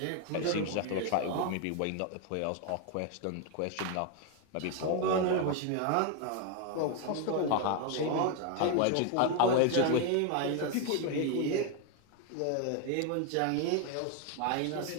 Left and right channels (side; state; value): both; different; correlation 0.01